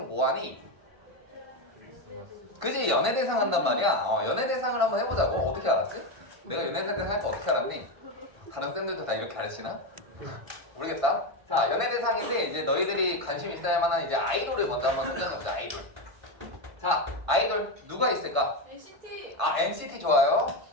뭐 하니? 그지? 연예대상 한단 말이야. 연예대상을 한번 해보자고. 어떻게 알았지? 내가 연예대상 할 거 어떻게 알았니? 다른 쌤들도 다 이렇게 가르치나? 모르겠다. 자, 연예대상인데 이제 너희들이 관심 있어야 할 만한 이제 아이돌을 먼저 한번 선정해보자. 아이돌. 자, 아이돌 누가 있을까? NCT. NCT 좋아요.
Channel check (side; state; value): left; late; 1.5 ms